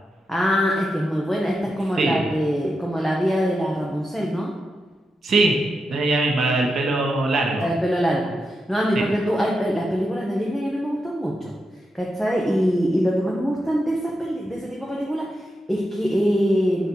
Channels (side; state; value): both; normal; correlation 0.87